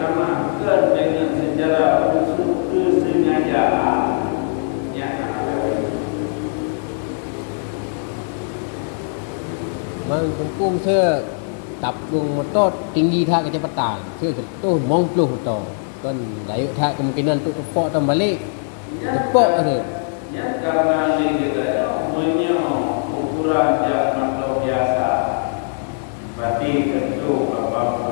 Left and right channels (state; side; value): silent; right; digital silence